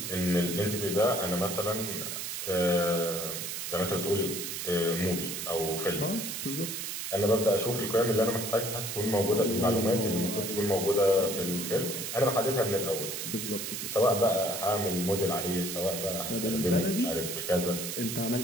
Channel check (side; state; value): right; noise; hiss, 5 dB below the sound